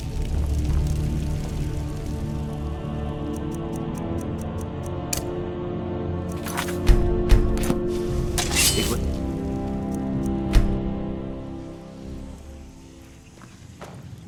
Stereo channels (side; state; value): both; identical; correlation 1.00